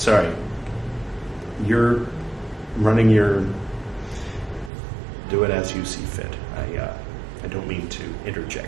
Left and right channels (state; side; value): drops out; left; at 4.7 s